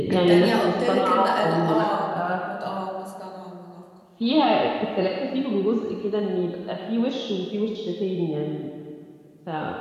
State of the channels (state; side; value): identical; both; correlation 1.00